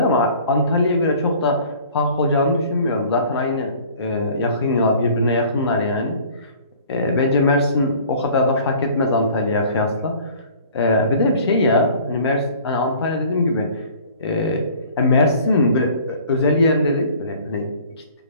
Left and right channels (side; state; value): both; inverted; correlation -0.49